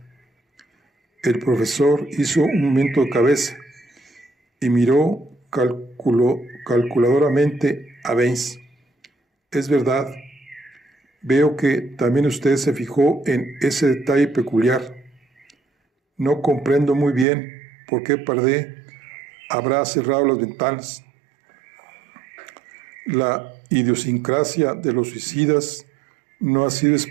El profesor hizo un movimiento de cabeza y miró calculadoramente a Benz. Es verdad. Veo que también usted se fijó en ese detalle peculiar. No comprendo muy bien por qué Pardé habrá cerrado las ventanas. La idiosincrasia de los suicidas no ha sido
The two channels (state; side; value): drops out; left; at 17.2 s